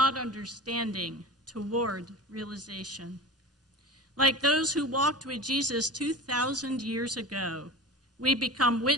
understanding toward realization. Like those who walked with Jesus 2,000 years ago, we become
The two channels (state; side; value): normal; both; correlation 0.33